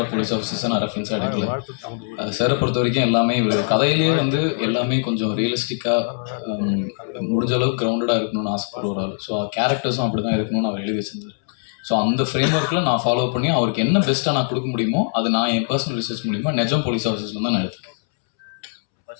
போலீஸ் ஆஃபீஸர்ஸை நான் ரெஃபரன்ஸாக எடுக்கல. சாரை பொறுத்த வரைக்கும் எல்லாமே இவர் கதையிலேயே வந்து எல்லாமே கொஞ்சம் ரியலிஸ்டிக்காக முடிஞ்ச அளவுக்கு கிரவுண்டடாக இருக்கணும்னு ஆசைப்படுவார். ஸோ கேரக்டர்ஸும் அப்படி தான் இருக்கணும்னு அவர் எழுதி வச்சிருந்தார். ஸோ அந்த ஃப்ரேம் ஒர்க்கில் நான் ஃபாலோ பண்ணி அவருக்கு என்ன பெஸ்ட்டாக நான் கொடுக்க முடியுமோ அது நான் என் பர்சனல் ரிசர்ச் மூலிமா நிஜம் போலீஸ் ஆஃபீஸர்ஸில் தான் நான் எடுத்துக்கேன்.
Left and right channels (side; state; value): right; silent; 65 dB below the other